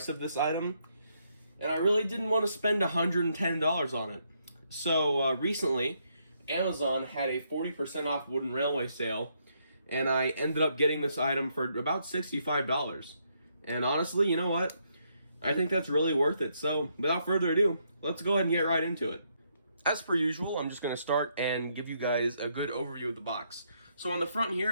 of this item, and I really didn't want to spend $110 on it. So recently, Amazon had a 40% off Wooden Railway sale, and I ended up getting this item for about $65. And honestly, you know what? I think that's really worth it. So without further ado, let's go ahead and get right into it. As per usual, I'm just going to start and give you guys a good overview of the box. So on the front here,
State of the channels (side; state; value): both; inverted; correlation -0.75